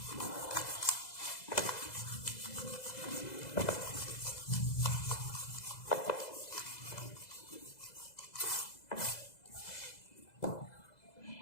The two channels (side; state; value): right; late; 2.0 ms